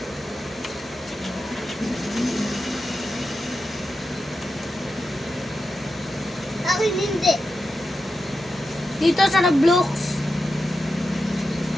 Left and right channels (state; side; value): normal; both; correlation 0.89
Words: Akin hindi. Dito sa Roblox.